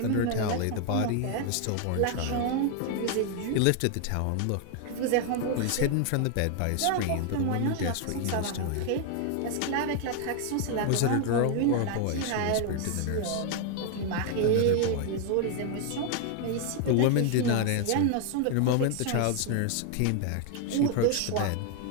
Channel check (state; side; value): different; both; correlation 0.00